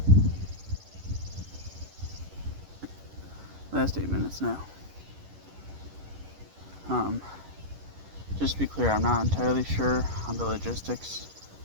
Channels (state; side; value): late; left; 11 ms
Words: Last 8 minutes now. Just to be clear, I'm not entirely sure on the logistics